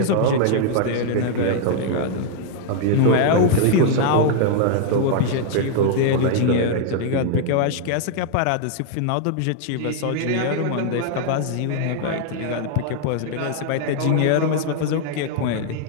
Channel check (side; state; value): both; different; correlation -0.01